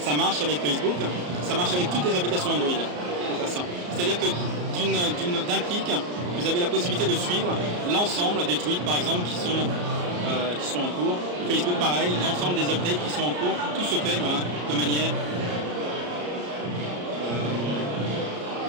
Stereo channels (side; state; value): left; late; 34 ms